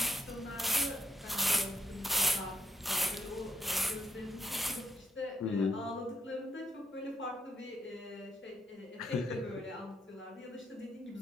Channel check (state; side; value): normal; both; correlation 0.78